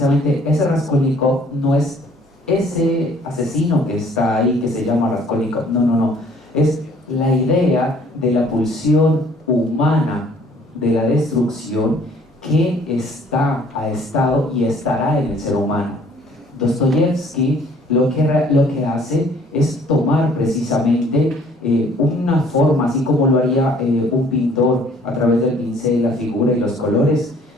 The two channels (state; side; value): normal; both; correlation 0.57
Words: ese Raskolnikov no es ese asesino que está ahí, que se llama Raskolnikov, no, es la idea de la pulsión humana de la destrucción que ha estado y estará en el ser humano. Dostoyevsky lo que hace es tomar precisamente una forma, así como lo haría un pintor a través del pincel, la figura y los colores,